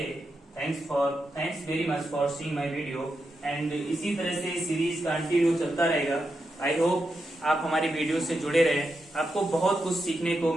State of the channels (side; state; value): both; normal; correlation 0.86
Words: thanks very much for seeing my video. And इसी तरह से सीरीज कंटिन्यू चलता रहेगा। आई होप आप हमारी वीडियो से जुड़े रहे, आपको बहुत कुछ सीखने को